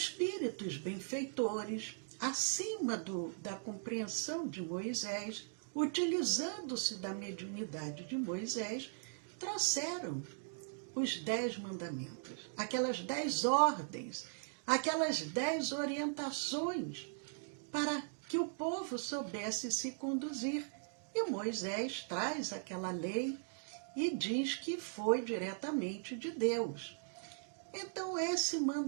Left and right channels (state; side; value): silent; left; digital silence